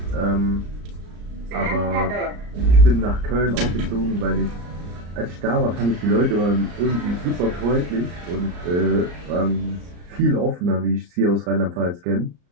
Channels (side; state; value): left; late; 34 ms